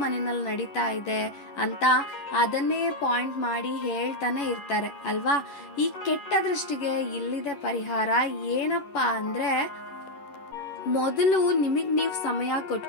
ಮನೆಯಲ್ಲಿ ನಡೀತಾ ಇದೆ ಅಂತ ಅದನ್ನೇ ಪಾಯಿಂಟ್ ಮಾಡಿ ಹೇಳ್ತಾನೆ ಇರ್ತಾರೆ ಅಲ್ವಾ? ಈ ಕೆಟ್ಟ ದೃಷ್ಟಿಗೆ ಇಲ್ಲಿದೆ ಪರಿಹಾರ. ಏನಪ್ಪಾ ಅಂದ್ರೆ, ಮೊದಲು ನಿಮಗ್ ನೀವು ಸಮಯ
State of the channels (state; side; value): late; right; 11 ms